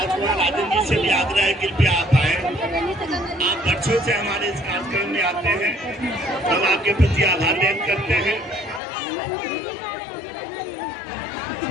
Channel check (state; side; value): drops out; right; at 8.8 s